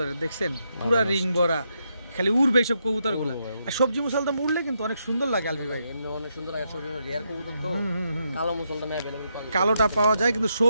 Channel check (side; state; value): both; inverted; correlation -0.80